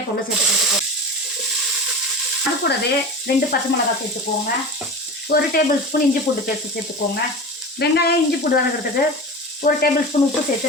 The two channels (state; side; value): normal; both; correlation 0.31